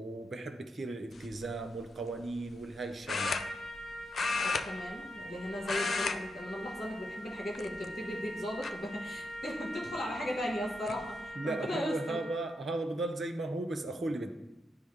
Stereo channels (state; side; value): normal; both; correlation 0.83